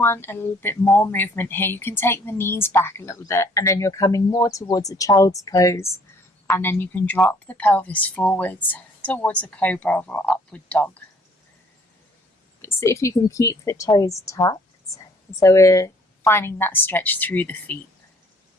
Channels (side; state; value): both; normal; correlation 0.60